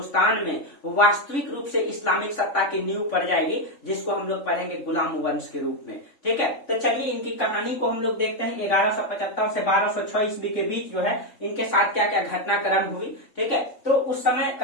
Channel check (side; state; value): right; late; 3.5 ms